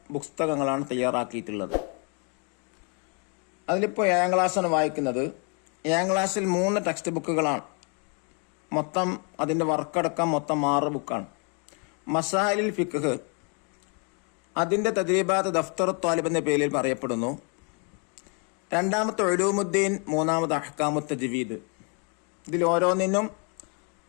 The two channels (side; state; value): right; quieter; 37.2 dB